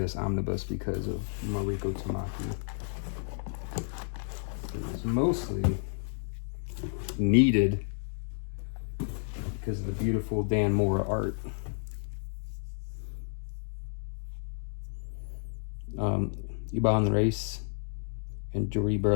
omnibus because of Mariko Tamaki. It was mostly needed because of the beautiful Dan Mora art. Iban Reis and Jordi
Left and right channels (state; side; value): silent; right; digital silence